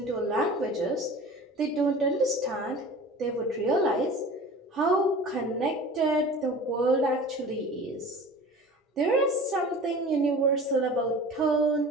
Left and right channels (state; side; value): normal; both; correlation 0.39